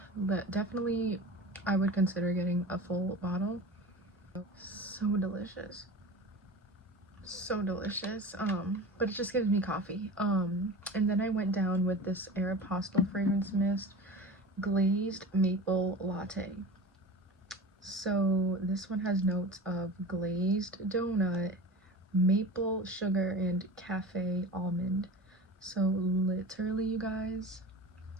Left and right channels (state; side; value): normal; both; correlation 0.33